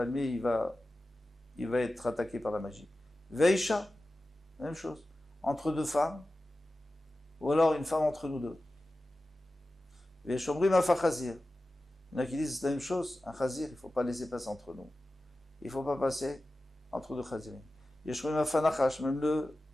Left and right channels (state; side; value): normal; both; correlation 0.95